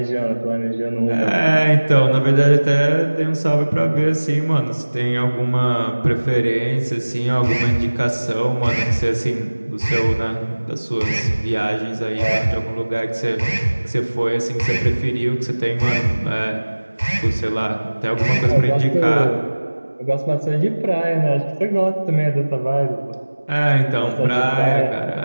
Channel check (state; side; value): inverted; both; correlation -1.00